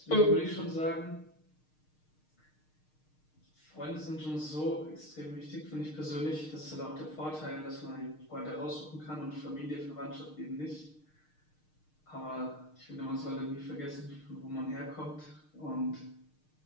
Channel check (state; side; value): late; right; 6.5 ms